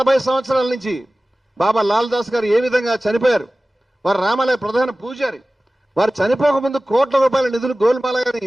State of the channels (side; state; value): both; normal; correlation 0.97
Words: సంవత్సరాల నుంచి బాబా లాల్దాస్ గారు ఏ విధంగా చనిపోయారు, వారు రామాలయ ప్రధాన పూజారి, వారు చనిపోకముందు కోట్ల రూపాయల నిధులు గోల్మాలయాన్ని